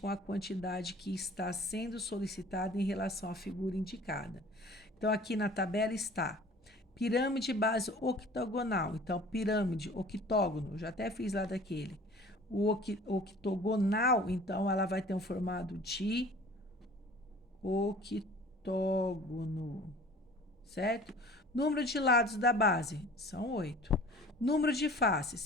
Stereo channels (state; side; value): normal; both; correlation 0.47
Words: a quantidade que está sendo solicitada em relação à figura indicada. Então, aqui na tabela está pirâmide base octogonal. Então, pirâmide, octógono, já até fiz lá daquele. O octogonal, então, ela vai ter um formato de octógono, certo? Número de lados da base são 8. Número de